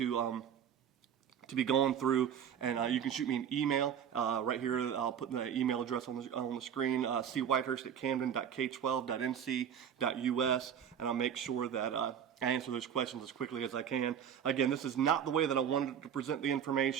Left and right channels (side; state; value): left; quieter; 8.6 dB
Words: be going through, and you can shoot me an email right here. I'll put the email address on the screen, cwhitehurst@camden.k12.nc.us, and I'll make sure that I answer those questions as quickly as I can. Again, this is not the way that I wanted to present the